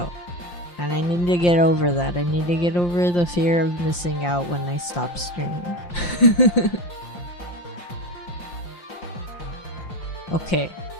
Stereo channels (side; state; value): right; late; 5.7 ms